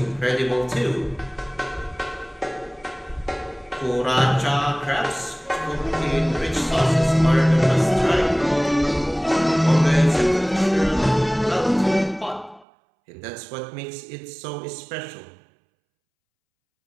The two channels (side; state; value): left; drops out; at 12.7 s